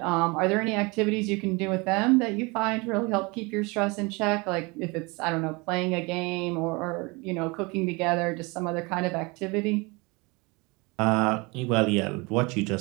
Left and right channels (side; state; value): left; quieter; 26.8 dB